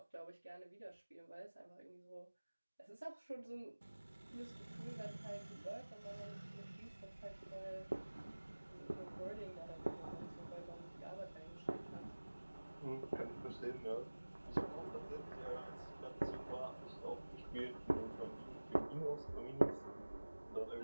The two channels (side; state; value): both; inverted; correlation -1.00